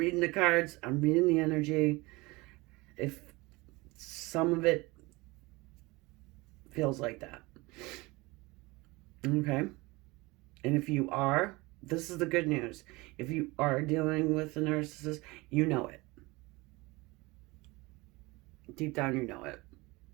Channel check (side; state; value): left; quieter; 23.3 dB